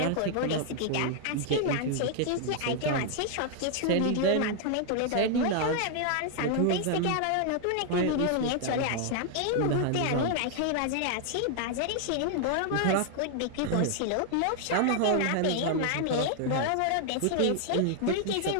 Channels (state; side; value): different; both; correlation 0.00